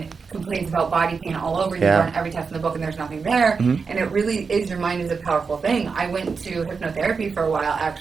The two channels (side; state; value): left; quieter; 5.1 dB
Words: complains about body pain all over and you run every test in the book and there's nothing there. And it really is, your mind is a powerful thing. I went to hypnotherapy for a while